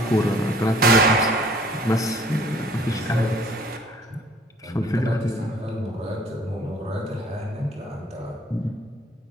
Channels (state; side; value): normal; both; correlation 0.55